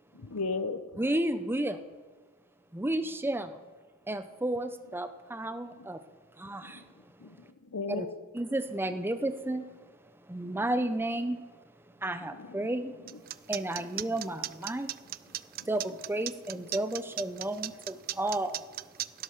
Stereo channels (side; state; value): both; normal; correlation 0.65